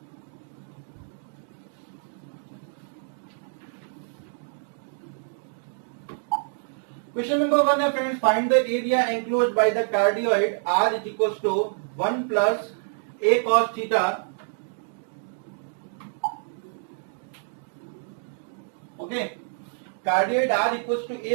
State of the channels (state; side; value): silent; left; digital silence